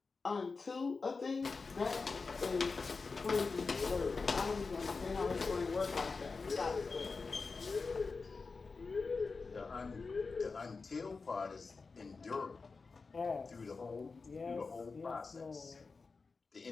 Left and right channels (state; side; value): quieter; right; 4.4 dB